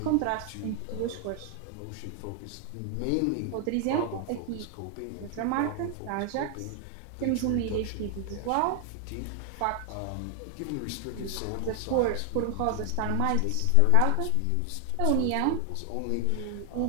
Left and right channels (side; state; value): both; different; correlation 0.00